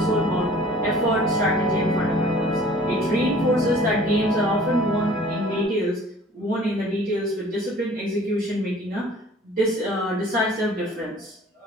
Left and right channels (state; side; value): normal; both; correlation 0.50